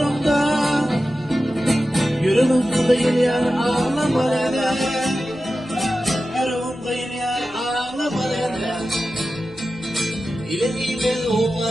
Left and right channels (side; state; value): left; noise; rumble, 25 dB below the sound